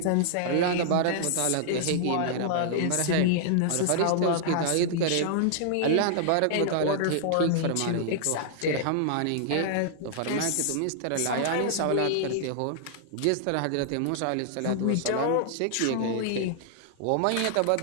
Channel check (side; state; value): both; different; correlation -0.01